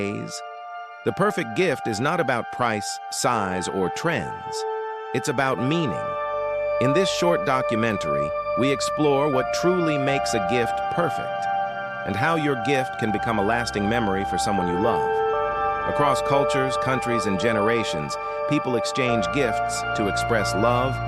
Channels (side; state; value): both; identical; correlation 1.00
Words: The perfect gift is not about price, size, or trends. It's about meaning. In this short documentary, we explore what truly makes a gift perfect and how your gift can become a lasting memory for someone you love. Across cultures, countries, and generations, people exchange gifts to express love,